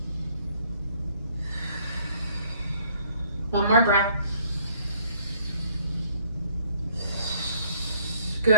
One more breath.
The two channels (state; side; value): inverted; both; correlation -0.61